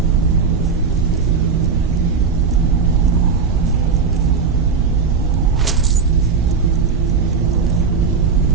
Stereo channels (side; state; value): left; quieter; 5.4 dB